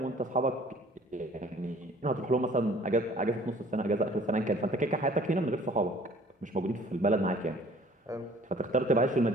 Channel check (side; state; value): both; normal; correlation 0.53